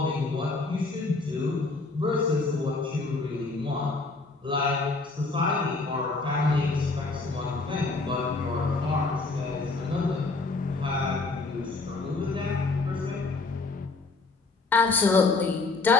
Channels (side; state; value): right; quieter; 3.7 dB